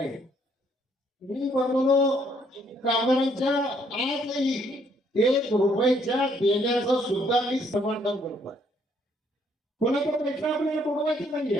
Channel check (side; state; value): both; normal; correlation 0.68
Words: मी म्हणलो कामगारांच्या आजही 1 रुपयाच्या देण्याचं सुद्धा मी समर्थन करतोय. कोणाचा पैसा आपल्याला बुडवायचा नाही